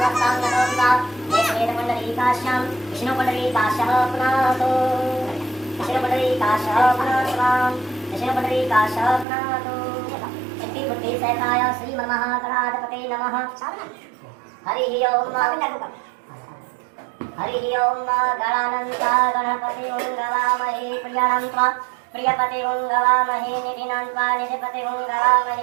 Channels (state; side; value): drops out; left; at 9.2 s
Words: त्वा श्वेतमण्डलीकाश्च विष्णुमण्डलीकाश्च प्रणतो विष्णुमण्डलीकाश्च प्रणतो विष्णुमण्डलीकाश्च प्रणतो। सिद्धिबुद्धिसहिताय श्रीमन्महागणाधिपते नमः। हरि ओम गणानन्ता गणपति गवामहे प्रियानन्त्वा प्रियपति गवामहे निधिनन्त्वा निधिपति